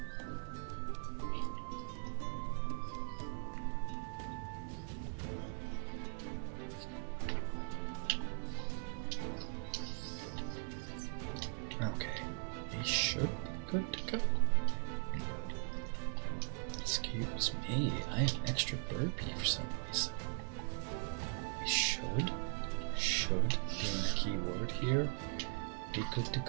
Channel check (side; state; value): left; silent; 51 dB below the other